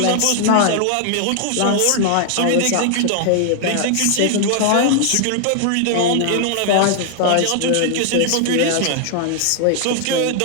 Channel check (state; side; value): different; both; correlation 0.00